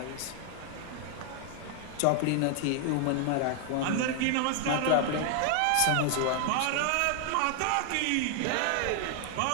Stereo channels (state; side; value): different; both; correlation 0.00